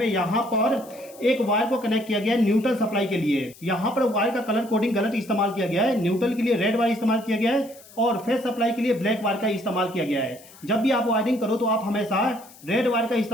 यहाँ पर एक वायर को कनेक्ट किया गया है न्यूट्रल सप्लाई के लिए। यहाँ पर वायर का कलर कोडिंग गलत इस्तेमाल किया गया है। न्यूट्रल के लिए रेड वायर इस्तेमाल किया गया है और फेस सप्लाई के लिए ब्लैक वायर का इस्तेमाल किया गया है। जब भी आप वायरिंग करो तो आप हमेशा रेड वायर का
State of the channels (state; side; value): noise; left; hiss, 22 dB below the sound